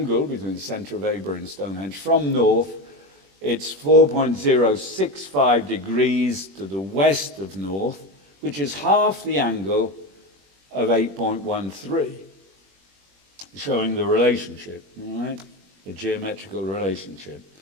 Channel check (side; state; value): left; late; 21 ms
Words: between the centre of Avebury and Stonehenge from north, it's 4.065 degrees to the west of north, which is half the angle of 8.13, showing the relationship, all right? The geometrical relationship.